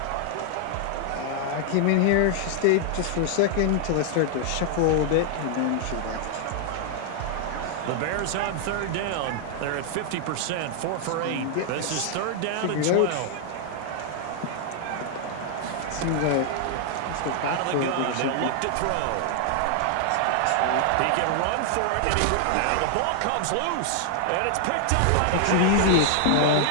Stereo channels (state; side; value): different; both; correlation 0.00